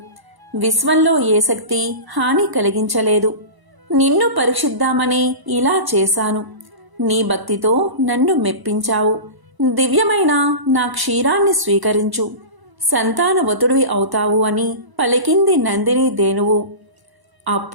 విశ్వంలో ఏ శక్తి హాని కలిగించలేదు. నిన్ను పరీక్షిద్దామని ఇలా చేశాను. నీ భక్తితో నన్ను మెప్పించావు. దివ్యమైన నా క్షీరాన్ని స్వీకరించు, సంతానవతుడివి అవుతావు అని పలికింది నందిని ధేనువు.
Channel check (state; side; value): late; left; 1.0 ms